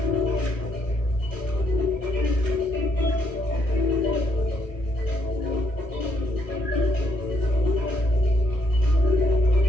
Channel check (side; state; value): right; late; 1.1 ms